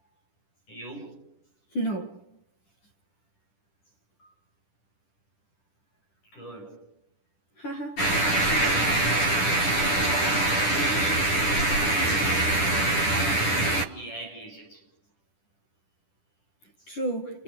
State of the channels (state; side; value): late; right; 10 ms